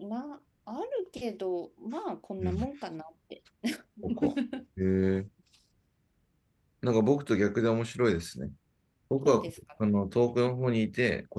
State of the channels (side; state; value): both; identical; correlation 1.00